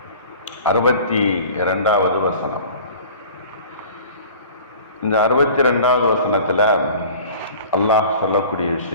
62வது வசனம். இந்த 62வது வசனத்தில் அல்லாஹ் சொல்லக்கூடிய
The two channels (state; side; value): inverted; both; correlation -0.44